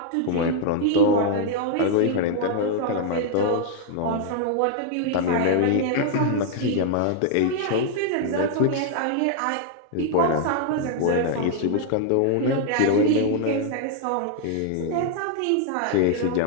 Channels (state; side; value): different; both; correlation 0.00